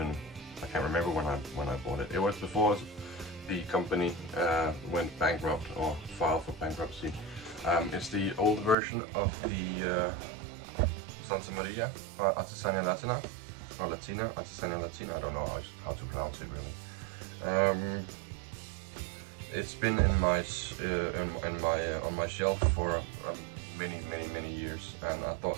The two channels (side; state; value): left; drops out; at 8.8 s